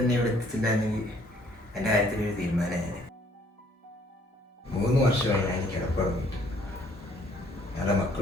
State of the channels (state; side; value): normal; both; correlation 0.62